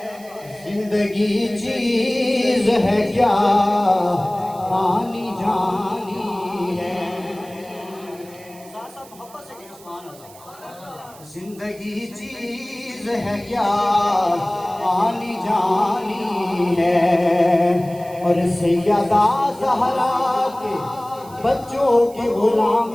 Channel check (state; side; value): noise; right; hiss, 22 dB below the sound